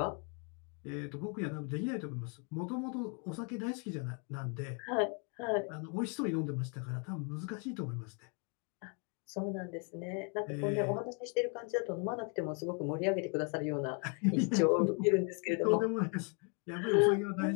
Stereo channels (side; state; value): right; quieter; 37.1 dB